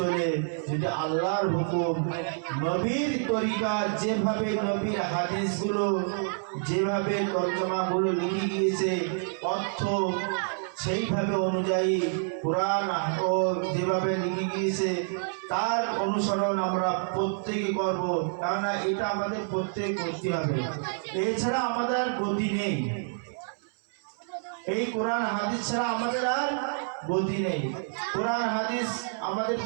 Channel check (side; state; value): left; silent; 59 dB below the other